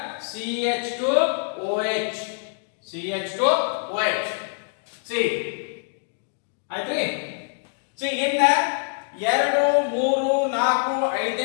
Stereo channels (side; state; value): right; silent; digital silence